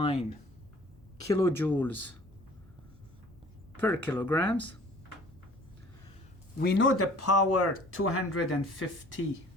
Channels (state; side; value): normal; both; correlation 0.50